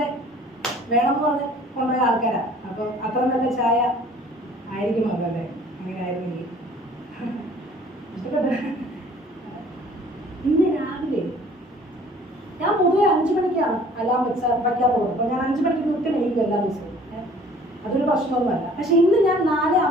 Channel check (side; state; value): both; normal; correlation 0.53